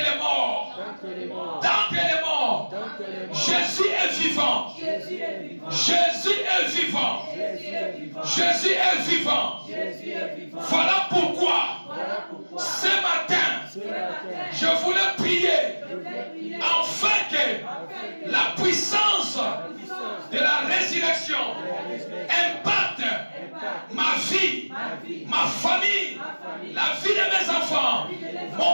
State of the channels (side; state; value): both; inverted; correlation -1.00